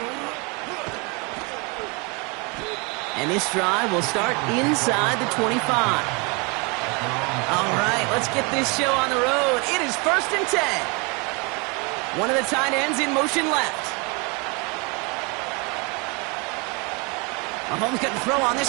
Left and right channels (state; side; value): quieter; left; 30.6 dB